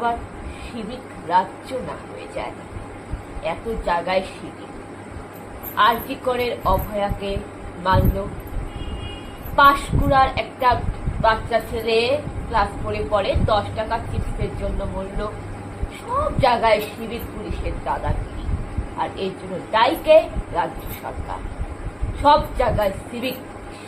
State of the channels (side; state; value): both; identical; correlation 1.00